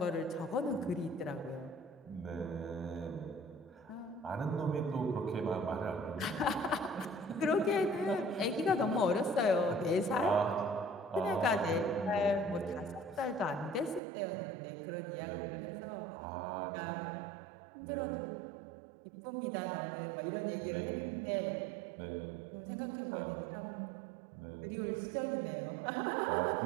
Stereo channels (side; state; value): left; drops out; at 14.0 s